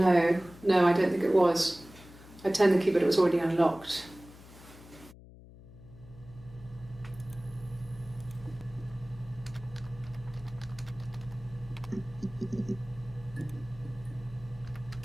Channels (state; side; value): noise; left; hum, 19 dB below the sound